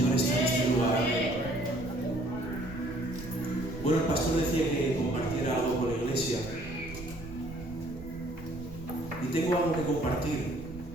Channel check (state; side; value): noise; right; rumble, 14 dB below the sound